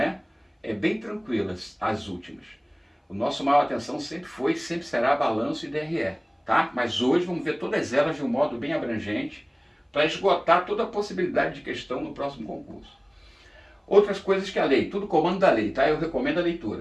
É bem tranquilas as últimas. O nosso maior atenção sempre foi e sempre será balanço e DRE, tá? Mas hoje vamos ver todas elas de um modo bem abrangente para esgotar toda a possibilidade de questão no próximo concurso. Outras coisas que a lei, tudo comando da lei, tá? Eu recomendo a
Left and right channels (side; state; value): both; identical; correlation 1.00